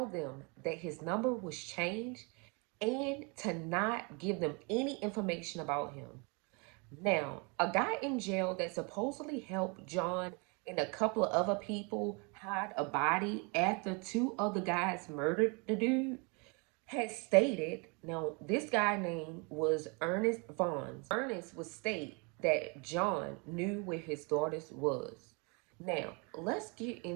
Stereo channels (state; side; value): quieter; left; 31.9 dB